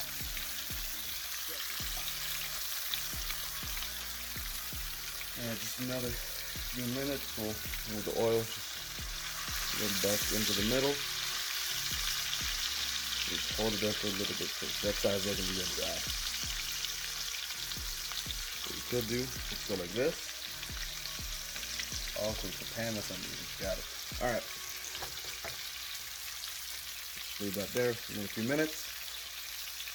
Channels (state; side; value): identical; both; correlation 1.00